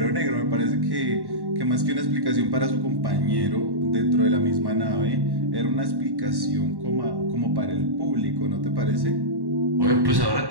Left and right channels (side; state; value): left; late; 1.1 ms